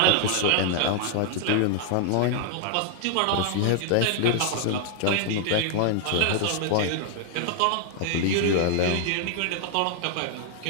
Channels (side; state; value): both; different; correlation 0.00